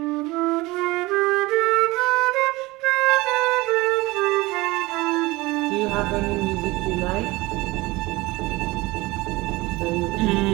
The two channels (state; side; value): quieter; left; 21.2 dB